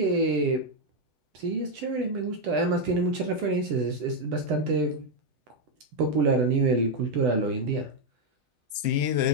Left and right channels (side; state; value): left; late; 9.0 ms